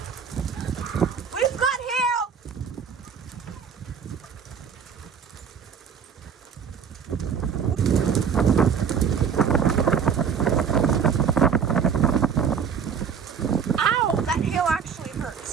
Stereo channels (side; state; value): left; quieter; 7.0 dB